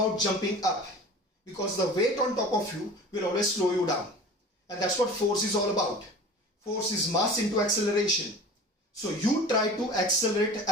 jumping up, because the weight on top of you will always slow you down. And that's what force is all about. Force is mass into acceleration. So you try to accelerate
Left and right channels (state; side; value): normal; both; correlation 0.39